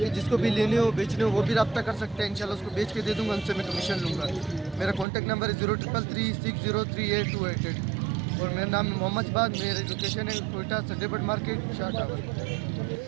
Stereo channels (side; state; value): left; drops out; at 5.1 s